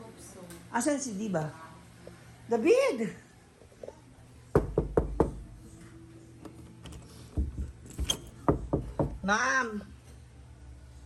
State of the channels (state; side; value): identical; both; correlation 1.00